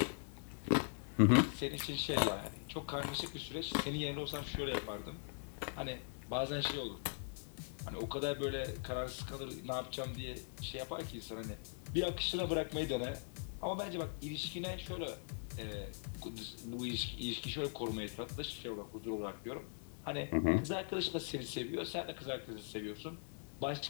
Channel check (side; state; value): right; silent; 50 dB below the other